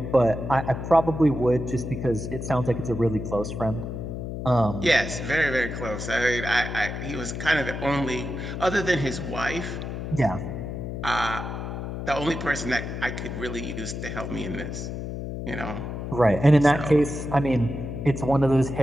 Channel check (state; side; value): noise; left; hum, 6 dB below the sound